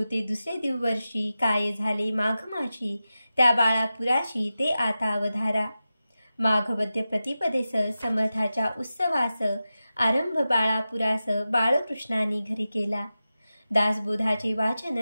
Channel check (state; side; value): inverted; both; correlation -0.93